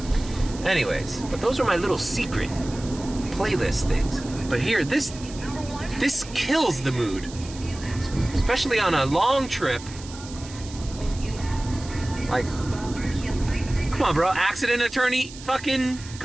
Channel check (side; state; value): right; noise; hiss, 16 dB below the sound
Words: Anyways, but those are my little secret playlist things. But here, this kills the mood. Especially on a long trip. Like, come on, bro. Accident attorney fucking